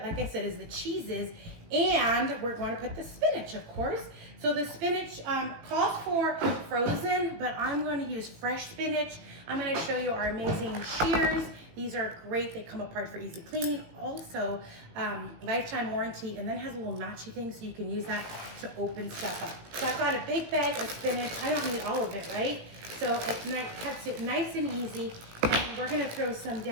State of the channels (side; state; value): left; late; 18 ms